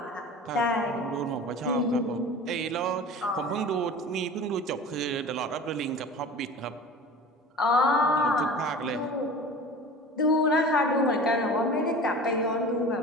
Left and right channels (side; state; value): both; normal; correlation 0.38